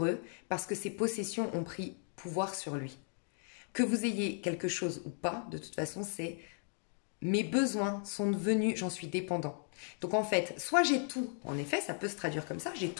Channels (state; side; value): silent; right; 54 dB below the other